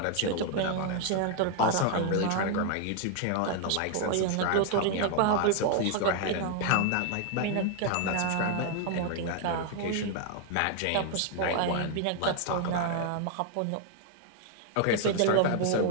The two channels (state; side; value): different; both; correlation 0.00